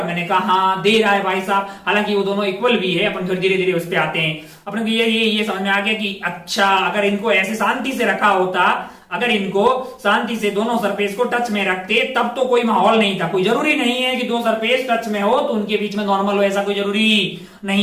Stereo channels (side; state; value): both; identical; correlation 1.00